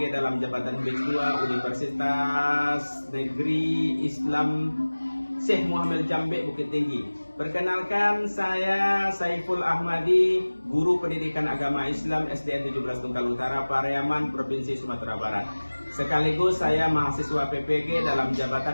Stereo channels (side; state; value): both; inverted; correlation -1.00